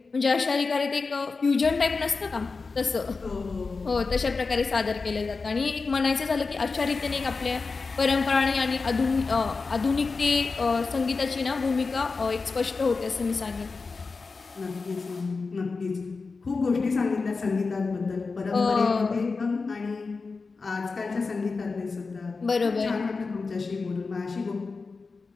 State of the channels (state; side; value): quieter; right; 4.3 dB